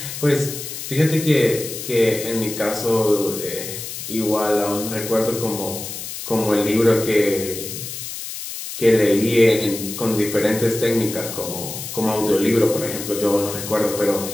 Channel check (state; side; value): noise; left; hiss, 8 dB below the sound